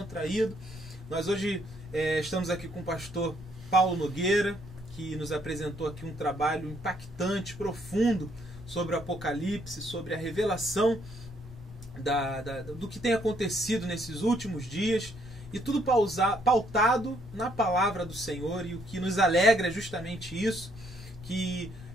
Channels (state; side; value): noise; left; rumble, 23 dB below the sound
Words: Nós hoje estamos aqui com o pastor Paulo Nogueira, que nos apresentou aqui um trabalho impactante, profundo, sobre o Apocalipse, sobre a revelação do que tem acontecido nesses últimos dias, e tudo pautado na palavra do Senhor. E o que nos alegra é justamente isso, que